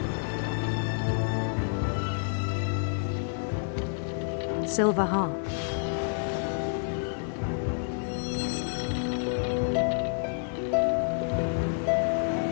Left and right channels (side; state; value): right; silent; 59 dB below the other